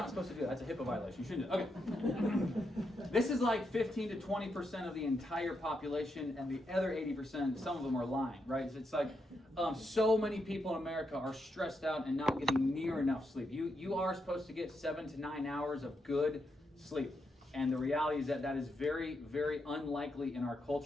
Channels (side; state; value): both; normal; correlation 0.82